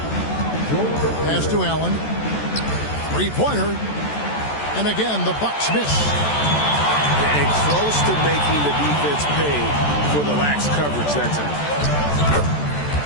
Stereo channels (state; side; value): late; right; 14 ms